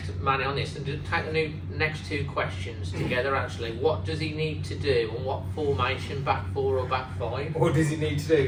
Manny, on this, and take the next 2 questions together. Actually, what does he need to do, and what formation, back 4 or back 5? What does he need to do?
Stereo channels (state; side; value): identical; both; correlation 1.00